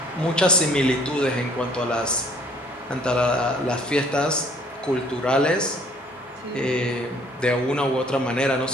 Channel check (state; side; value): normal; both; correlation 0.59